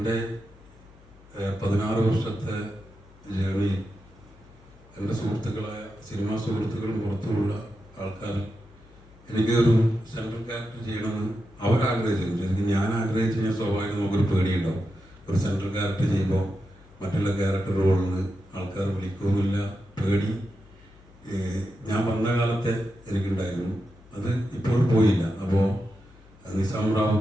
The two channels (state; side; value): noise; left; hum, 25 dB below the sound